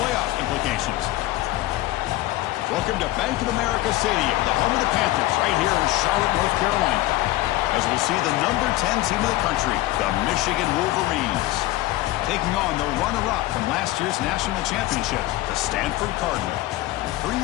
playoff implications. Welcome to Bank of America Stadium, the home of the Panthers, right here in Charlotte, North Carolina, as we'll see the number 10 team of the country, the Michigan Wolverines, taking on the runner-up from last year's national championship, the Stanford Cardinal. For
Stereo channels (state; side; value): quieter; right; 17.0 dB